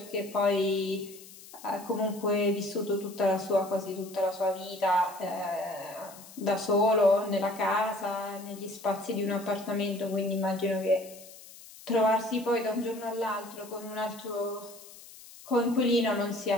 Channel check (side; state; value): left; noise; hiss, 19 dB below the sound